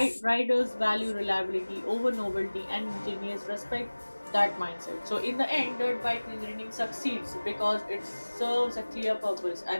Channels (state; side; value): inverted; both; correlation -1.00